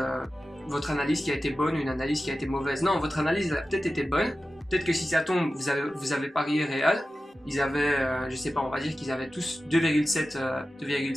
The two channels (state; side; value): normal; both; correlation 0.94